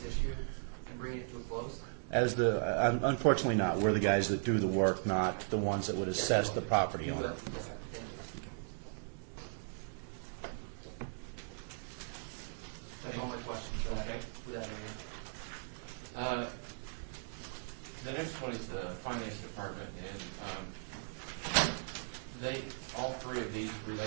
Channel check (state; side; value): silent; left; digital silence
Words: issue and bringing it to a close? Unfortunately not. We're the guys that do the work, not the ones that would assess the property You owner. will. Yes, sir. Thank you. That's all my questions. So Okay. with that area. The next one is the finance department, and all three of these